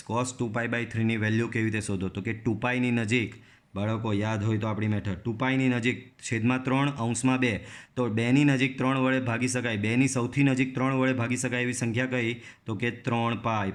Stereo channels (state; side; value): identical; both; correlation 1.00